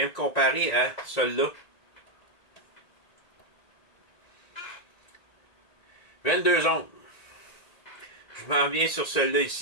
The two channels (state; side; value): late; right; 1.9 ms